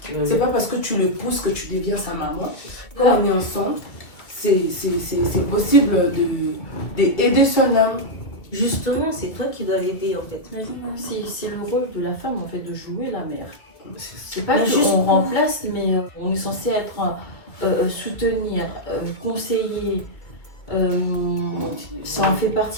C'est pas parce que tu le pousses que tu deviens sa maman. Quand on est ensemble, c'est possible d'aider son homme. Justement, c'est toi qui dois l'aider en fait. C'est le rôle de la femme, en fait, de jouer la mère. C'est pas Mais qu'on juste- remplace, mais on est censé être soutenir, conseiller. Ça en fait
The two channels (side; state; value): right; late; 2.0 ms